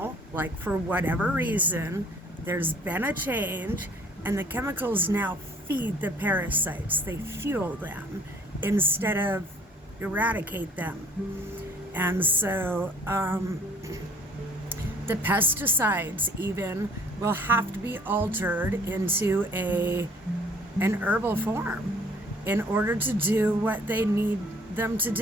like for whatever reason, there's been a change, and the chemicals now feed the parasites. They fuel them instead of eradicate them. And so the pesticides even will have to be altered into an herbal form in order to do what they need them to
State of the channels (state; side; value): normal; both; correlation 0.57